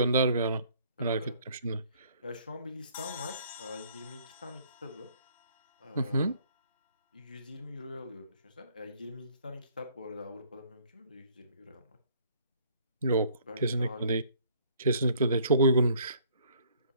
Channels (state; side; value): inverted; both; correlation -0.59